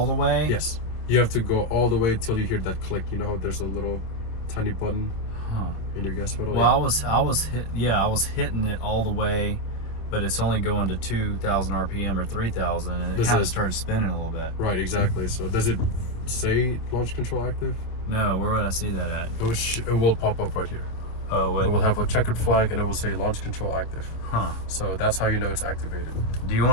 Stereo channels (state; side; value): late; right; 26 ms